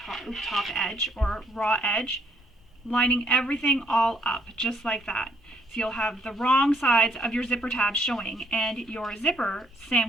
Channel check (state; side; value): normal; both; correlation 0.67